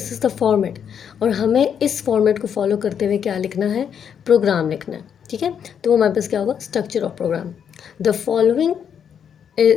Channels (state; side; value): quieter; right; 8.0 dB